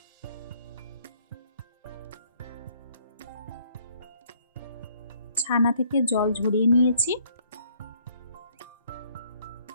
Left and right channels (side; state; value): both; inverted; correlation -0.63